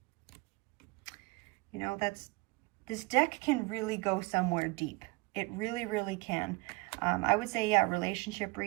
You know, this deck can really go somewhere deep. It really, really can. I would say, yeah, relationship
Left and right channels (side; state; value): left; quieter; 25.1 dB